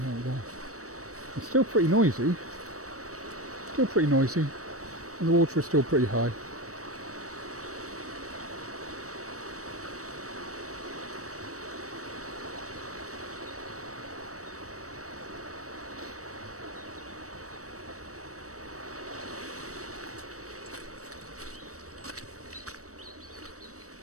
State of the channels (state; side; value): late; left; 0.65 ms